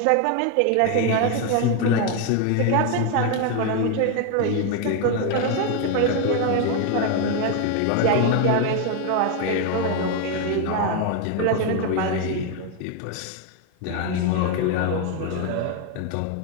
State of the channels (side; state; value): both; different; correlation 0.01